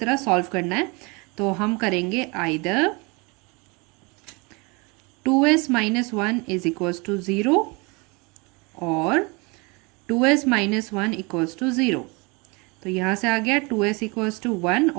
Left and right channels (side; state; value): left; quieter; 28.1 dB